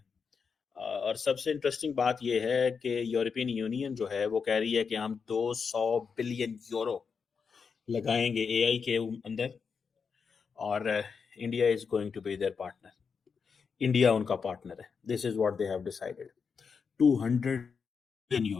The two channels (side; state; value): right; quieter; 5.8 dB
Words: और सबसे इंटरेस्टिंग बात यह है कि यूरोपियन यूनियन जो है वो कह रही है कि हम 200 बिलियन यूरो लगाएंगे एआई के अंदर, और India is going to be their partner. India उनका पार्टनर है। This is what they have decided, 200 billion